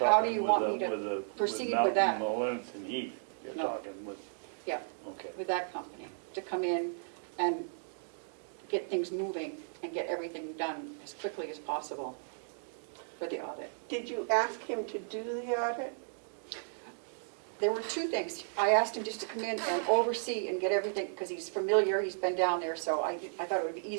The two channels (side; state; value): left; silent; digital silence